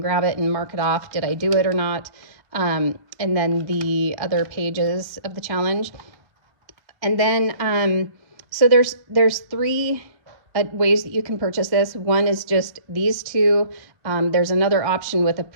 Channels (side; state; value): left; late; 1.4 ms